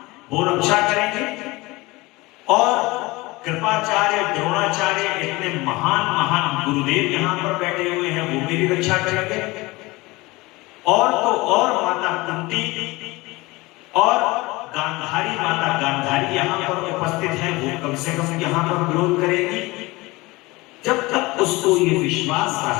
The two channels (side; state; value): right; quieter; 22.0 dB